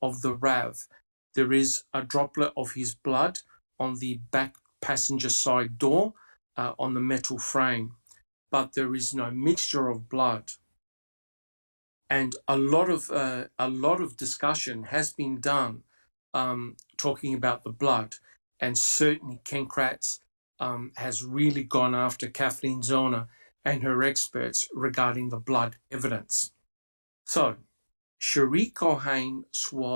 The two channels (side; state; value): both; inverted; correlation -1.00